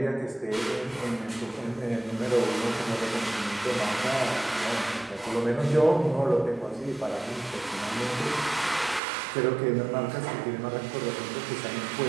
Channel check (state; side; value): drops out; left; at 9.0 s